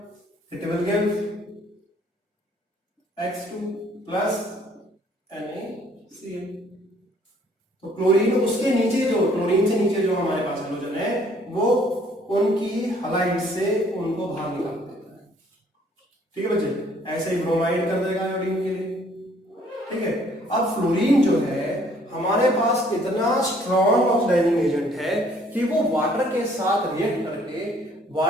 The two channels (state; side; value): normal; both; correlation 0.61